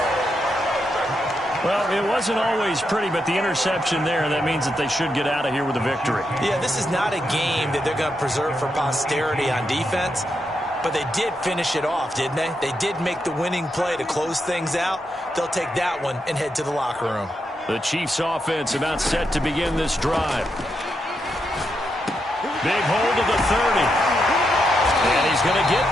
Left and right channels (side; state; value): both; normal; correlation 0.83